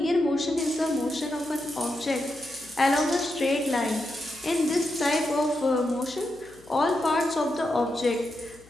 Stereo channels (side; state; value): left; noise; hum, 26 dB below the sound